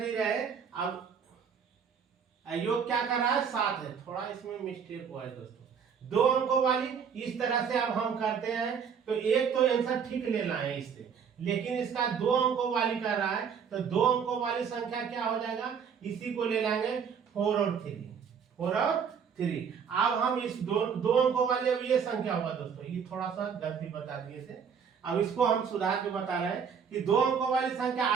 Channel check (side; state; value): left; quieter; 6.9 dB